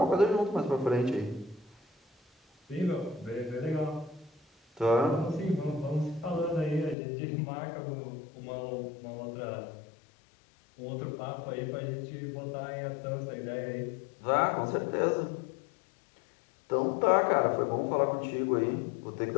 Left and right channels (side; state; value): right; drops out; at 7.0 s